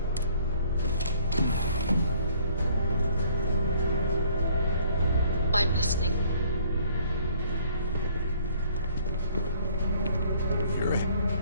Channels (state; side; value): inverted; both; correlation -0.59